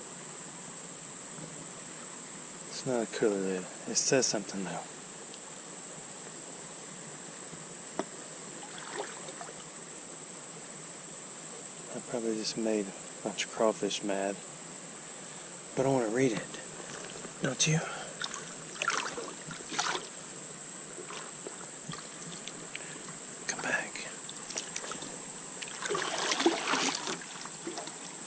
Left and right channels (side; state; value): both; identical; correlation 1.00